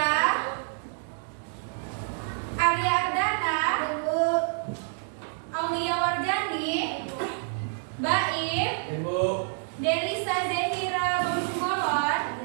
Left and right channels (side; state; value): left; silent; 59 dB below the other